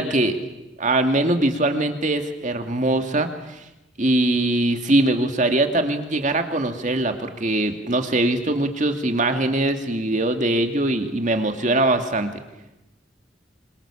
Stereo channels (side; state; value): both; normal; correlation 0.46